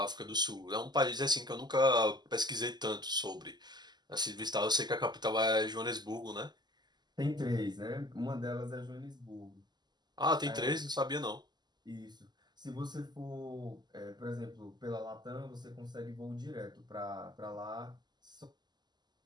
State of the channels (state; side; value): late; left; 0.21 ms